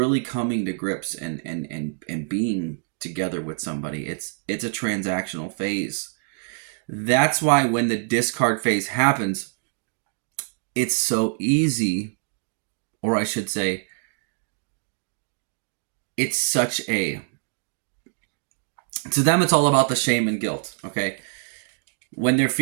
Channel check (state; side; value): silent; left; digital silence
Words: coming to grips and being together with somebody. It's a transactional phase. That's why when the discard phase happens, it's so easy or I should say, it's such a, to them, it's all about the shame and guilt, okay? When they're